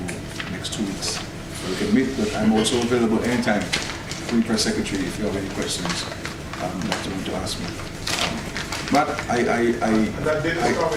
next 2 weeks where we can meet. But I'm also available anytime, free press secretary, if you have any questions to ask me. Matt, I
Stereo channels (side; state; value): both; identical; correlation 1.00